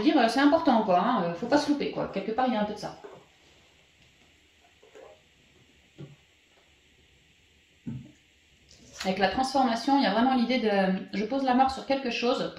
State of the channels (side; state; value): both; identical; correlation 1.00